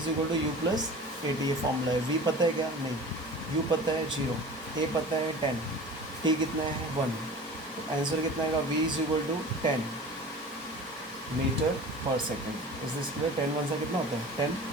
equal to u plus a t, ये फॉर्मूला है। v पता है क्या, नहीं। u पता है 0, a पता है 10, t कितना है 1, तो आंसर कितना आएगा, v is equal to 10 metre पर सेकेंड। Is this clear. 10 1 सा कितना होता है 10।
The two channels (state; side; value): normal; both; correlation 0.38